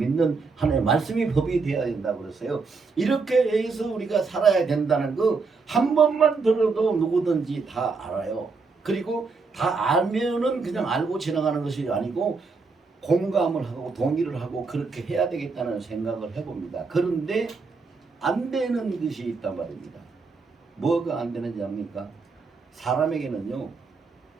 하나님의 말씀이 법이 되어야 된다고 그랬어요. 이렇게 해서 우리가 살아야 된다는 거 한 번만 들어도 누구든지 다 알아요. 그리고 다 알면은 그냥 알고 지나가는 것이 아니고 공감을 하고 동의를 하고 그렇게 해야 되겠다는 생각을 해봅니다. 그런데 안 되는 것이 있단 말입니다. 뭐가 안 되는지 압니까? 사람에게는요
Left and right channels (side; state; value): left; quieter; 4.5 dB